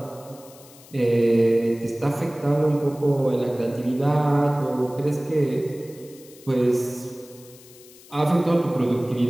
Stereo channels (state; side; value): noise; left; hiss, 22 dB below the sound